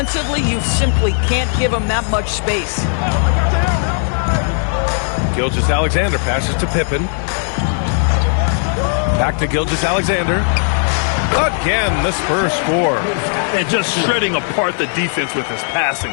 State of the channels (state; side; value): silent; right; 59 dB below the other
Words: you simply can't give him that much space. Gilgeous-Alexander passes to Pippen. Back to Gilgeous-Alexander. Again, the Spurs score. And just shredding apart the defense with his